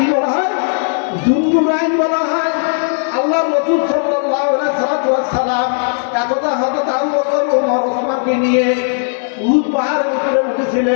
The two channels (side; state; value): right; silent; digital silence